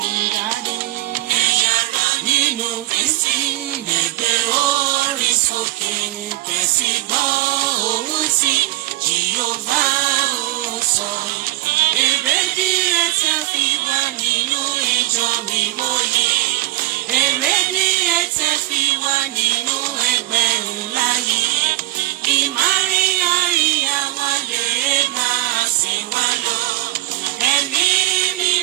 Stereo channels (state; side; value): quieter; left; 17.2 dB